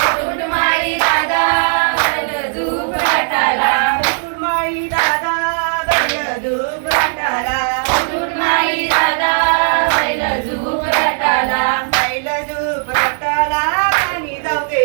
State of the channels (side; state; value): left; silent; digital silence